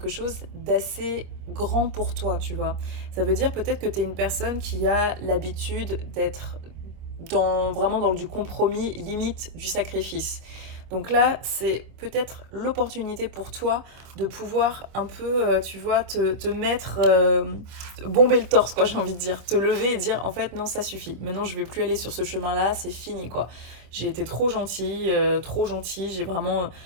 chose d'assez grand pour toi, tu vois. Ça veut dire peut-être que tu es une personne qui a l'habitude d'être vraiment dans du compromis, limite du sacrifice. Donc là, c'est peut-être l'opportunité pour toi de pouvoir un peu, tu vois, te mettre, bomber le torse, quoi, j'ai envie de dire. Te lever et dire, en fait, non, ça suffit. Maintenant, je vais plus aller sur ce chemin-là, c'est fini, quoi. J'ai été trop gentille, j'ai vraiment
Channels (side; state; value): left; late; 26 ms